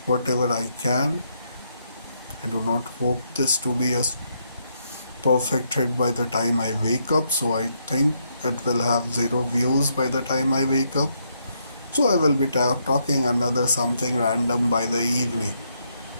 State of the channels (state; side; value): inverted; both; correlation -0.76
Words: whatever I can. I do not hope this to be a perfect hit by the time I wake up, so I think it will have zero views by the time I wake up. So I will be talking another something random by the evening.